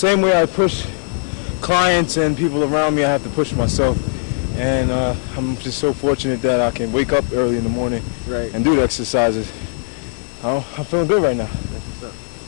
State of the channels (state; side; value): silent; right; digital silence